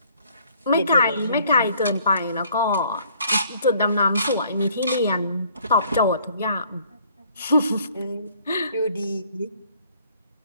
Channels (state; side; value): inverted; both; correlation -0.60